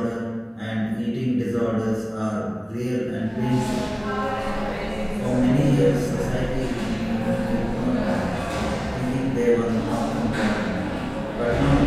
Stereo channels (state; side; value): identical; both; correlation 1.00